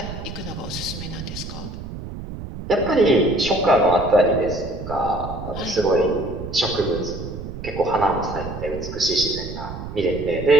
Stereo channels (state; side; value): noise; right; rumble, 9 dB below the sound